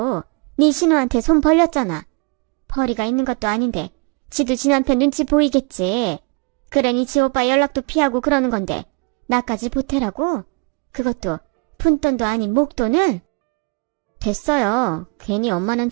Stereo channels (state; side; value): quieter; left; 33.2 dB